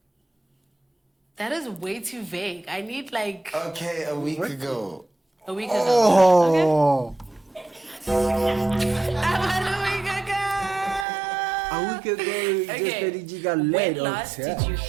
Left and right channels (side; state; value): left; drops out; at 11.1 s